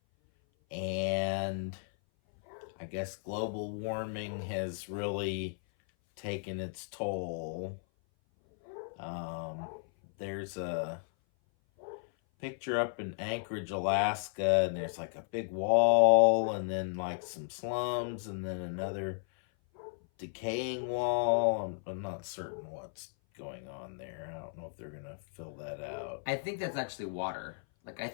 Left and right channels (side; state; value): right; silent; 55 dB below the other